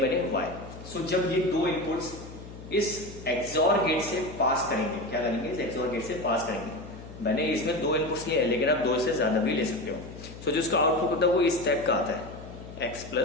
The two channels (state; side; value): noise; left; hum, 14 dB below the sound